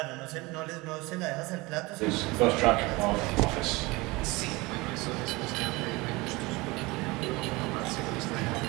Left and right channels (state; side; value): quieter; left; 23.2 dB